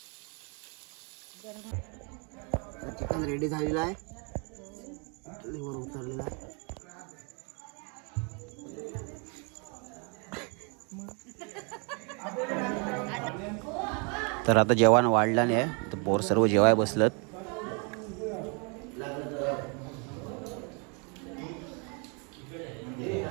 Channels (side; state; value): left; quieter; 34.6 dB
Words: चिकन रेडी झालेला आहे, चुलीवर उतरलेला आहे. तर आता जेवण वाढलं नाही, तर पोर सर्व जेवाय बसलत.